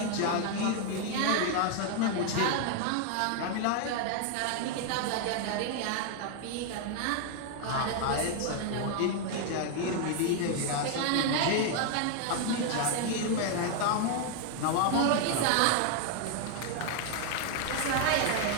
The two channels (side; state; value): both; different; correlation 0.00